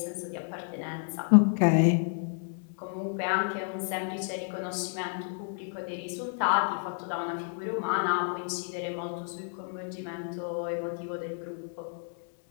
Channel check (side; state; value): right; silent; 57 dB below the other